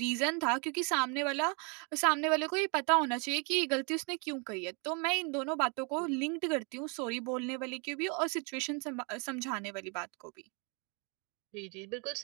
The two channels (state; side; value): quieter; left; 34.5 dB